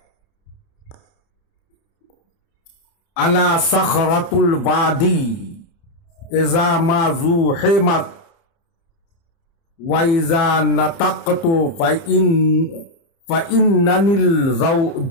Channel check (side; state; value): right; late; 30 ms